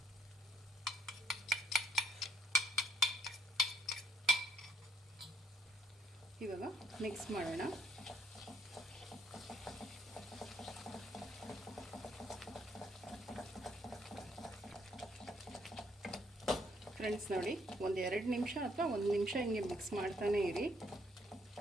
ಇವಾಗ ಮಿಕ್ಸ್ ಮಾಡೋಣ. ಫ್ರೆಂಡ್ಸ್, ನೋಡಿ, ಒಂದು 2 ನಿಮಿಷ ಅಥವಾ 1 ನಿಮಿಷ ಹಿಂಗೆ ಮಿಕ್ಸ್ ಮಾಡ್ತಾನೆ ಇರಿ.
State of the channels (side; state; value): both; normal; correlation 0.68